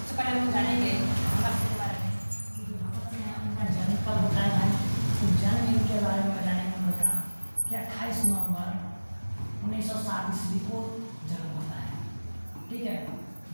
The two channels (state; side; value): inverted; both; correlation -1.00